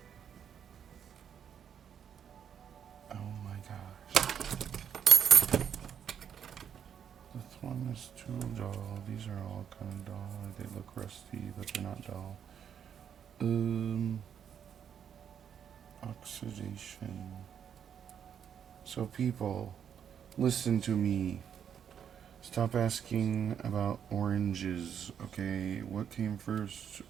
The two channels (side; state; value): left; quieter; 8.4 dB